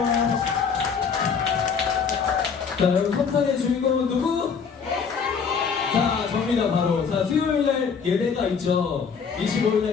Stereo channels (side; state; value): right; quieter; 6.1 dB